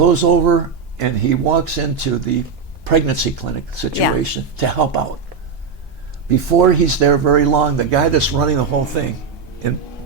over and he walks into the pregnancy clinic situation to help out. Before he's there very long, the guy that's running the whole thing in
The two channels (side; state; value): left; quieter; 5.5 dB